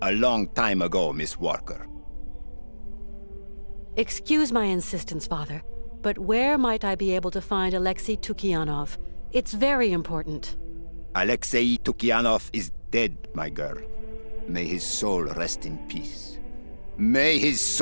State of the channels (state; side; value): inverted; both; correlation -1.00